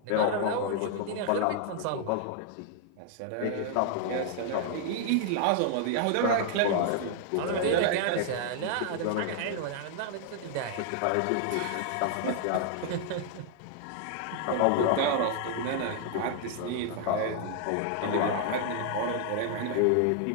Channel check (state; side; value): different; both; correlation 0.00